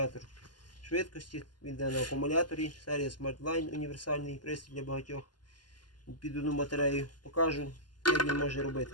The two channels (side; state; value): right; late; 0.71 ms